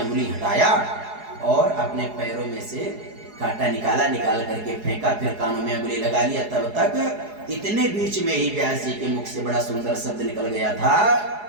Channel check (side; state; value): left; late; 4.8 ms